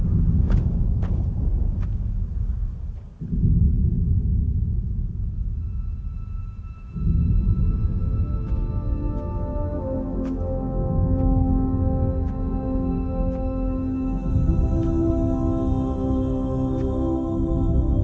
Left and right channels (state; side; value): identical; both; correlation 1.00